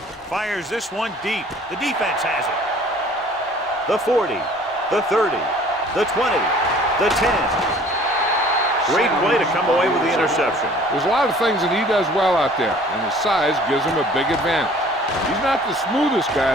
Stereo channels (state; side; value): normal; both; correlation 0.52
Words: Fires this one deep. The defense has it. The 40, the 30, the 20, the 10. Great play to come away with the interception. There's a lot of things that he does well out there, and his size gives him a big advantage. He's not the smoothest guy